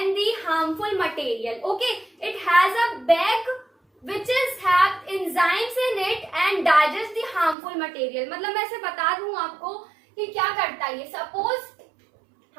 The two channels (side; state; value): left; drops out; at 7.6 s